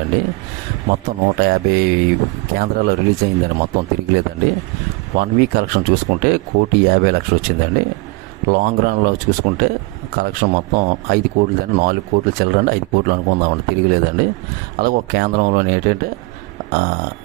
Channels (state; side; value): quieter; left; 24.0 dB